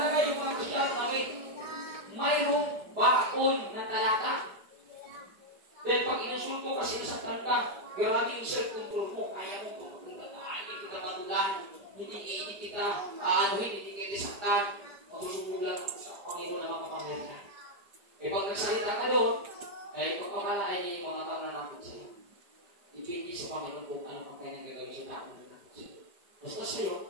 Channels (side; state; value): left; late; 5.1 ms